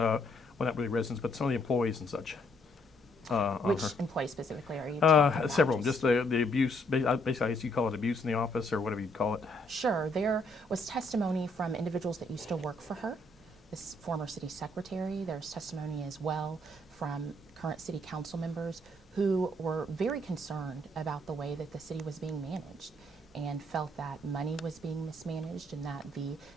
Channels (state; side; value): normal; both; correlation 0.70